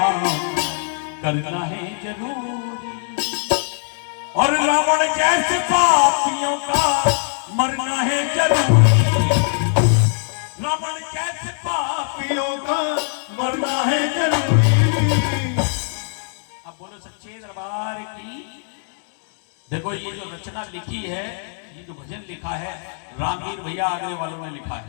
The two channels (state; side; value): silent; right; 65 dB below the other